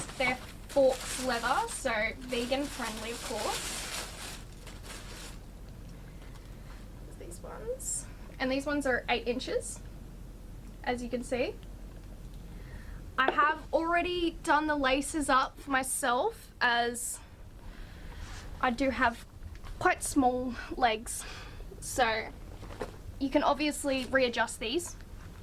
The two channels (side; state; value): both; identical; correlation 1.00